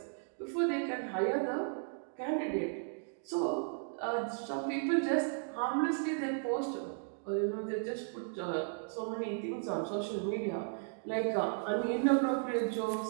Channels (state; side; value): silent; left; digital silence